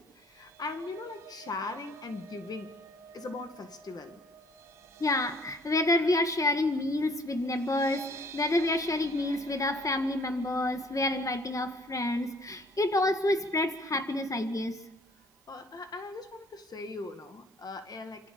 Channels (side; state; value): both; normal; correlation 0.58